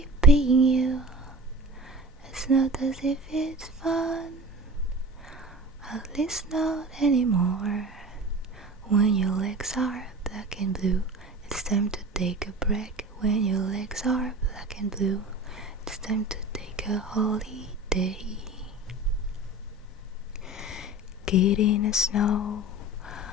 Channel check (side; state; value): both; normal; correlation 0.35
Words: paying you. It's not as if it's fun, at least not anymore. When your legs are black and blue, it's time to take a break. When your legs are black and blue, it's time to take a holiday. Get in the snow,